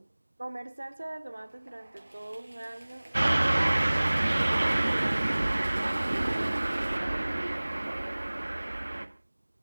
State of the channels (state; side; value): inverted; both; correlation -1.00